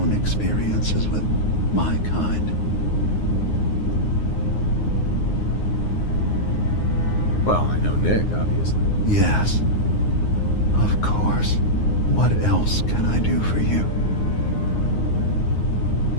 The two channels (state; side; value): late; right; 9.6 ms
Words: experiences with my kind. Well, I know Nick, obviously. Yes. Of course. What else can I do for you?